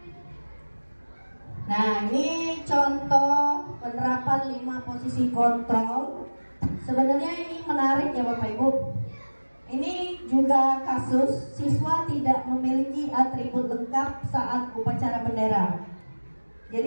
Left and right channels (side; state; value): both; inverted; correlation -1.00